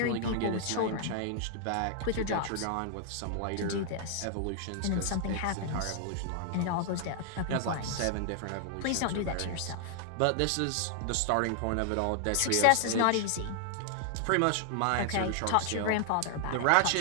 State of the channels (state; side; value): different; both; correlation 0.00